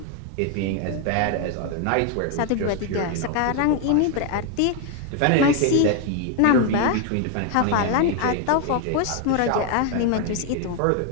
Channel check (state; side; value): different; both; correlation 0.01